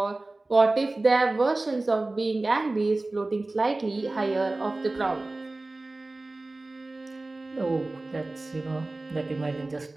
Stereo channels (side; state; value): left; quieter; 3.0 dB